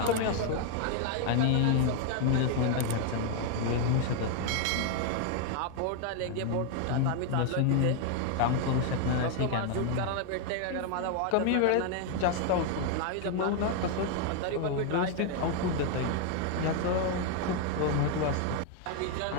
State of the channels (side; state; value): both; different; correlation 0.00